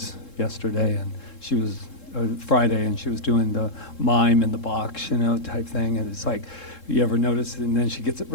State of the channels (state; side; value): late; right; 3.7 ms